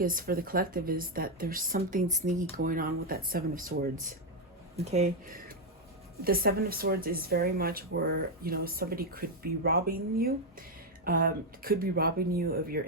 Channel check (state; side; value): normal; both; correlation 0.03